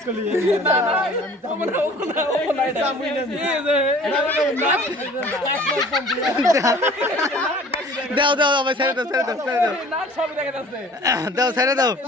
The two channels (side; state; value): both; normal; correlation 0.48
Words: না না তোমরা ওপনা এটা দাও দাও ভাই ছেড়ে দাও ছেড়ে দাও ছেড়ে দাও না সব দেখা যাচ্ছে দাও ছেড়ে দাও